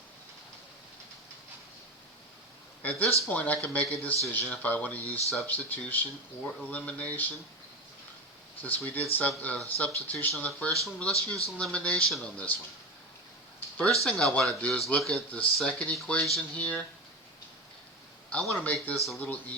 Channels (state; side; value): normal; both; correlation 0.22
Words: At this point, I can make a decision if I want to use substitution or elimination. Since we did substitution on the first one, let's use elimination on this one. First thing I want to do is look at the second equation here. I want to make this a little